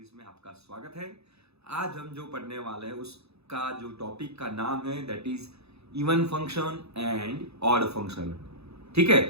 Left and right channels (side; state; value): left; late; 0.79 ms